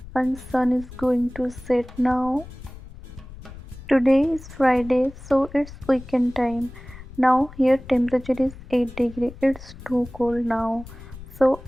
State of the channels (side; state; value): left; noise; rumble, 16 dB below the sound